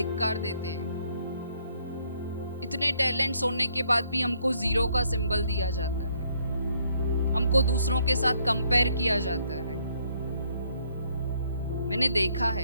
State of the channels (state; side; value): inverted; both; correlation -0.68